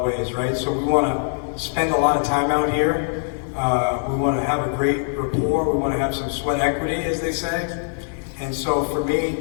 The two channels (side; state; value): right; silent; 62 dB below the other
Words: ways, right? So we want to spend a lot of time out here. We want to have a great rapport. We want to have some sweat equity, as they say. And so for me,